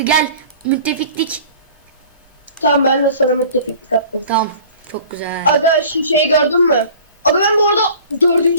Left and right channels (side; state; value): both; inverted; correlation -0.45